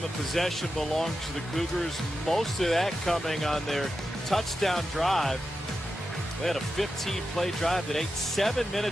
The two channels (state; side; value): normal; both; correlation 0.90